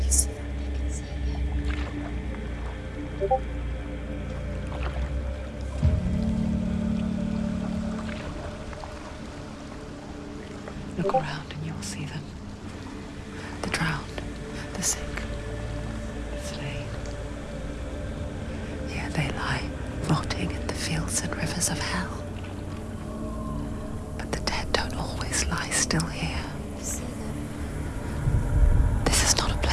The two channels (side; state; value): both; identical; correlation 1.00